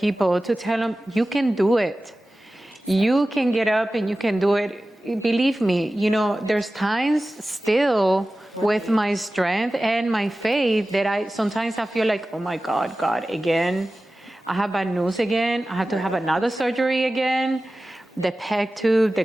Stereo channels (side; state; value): both; normal; correlation 0.96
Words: to tell them, you can do it. You can get up and you can do it. Believe me, you know, there's times still with my strength and my faith that sometimes I feel like, oh my God, again, I have bad news again. I have to have another surgery again. The PEG tube, the